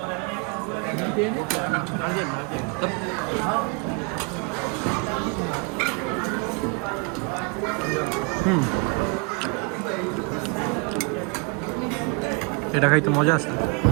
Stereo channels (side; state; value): left; quieter; 32.3 dB